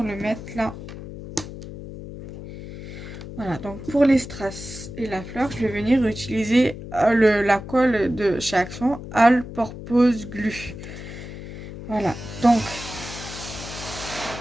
le mettre là. Voilà, donc pour les strass et la fleur, je vais venir utiliser la colle de chez Action, All Purpose Glue. Voilà, donc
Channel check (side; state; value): left; noise; hum, 11 dB below the sound